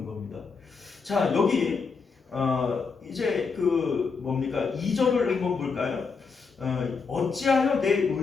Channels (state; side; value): quieter; right; 5.0 dB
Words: 겁니다. 자, 여기 이제 그 뭡니까? 2절을 한번 볼까요? 어찌하여 내